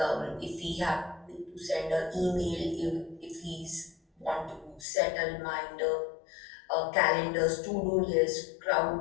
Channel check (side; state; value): right; drops out; at 4.9 s